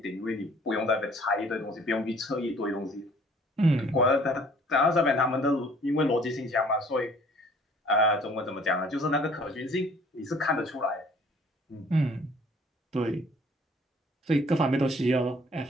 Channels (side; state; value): both; normal; correlation 0.55